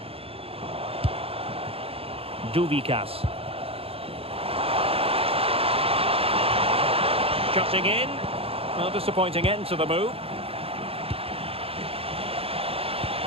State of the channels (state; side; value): late; left; 0.28 ms